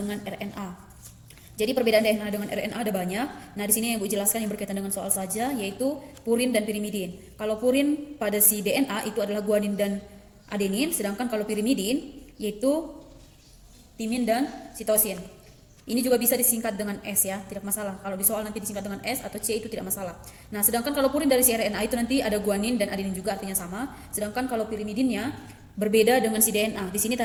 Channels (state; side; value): identical; both; correlation 1.00